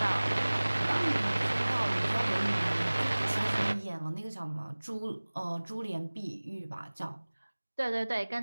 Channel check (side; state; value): both; inverted; correlation -1.00